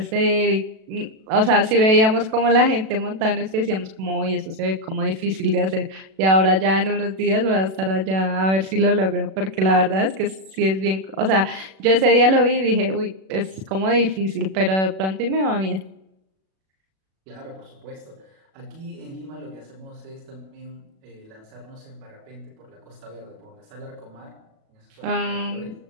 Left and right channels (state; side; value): late; left; 37 ms